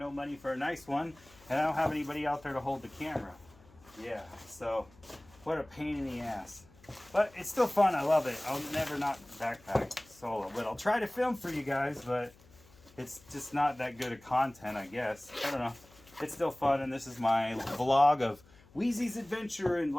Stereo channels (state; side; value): noise; left; hum, 26 dB below the sound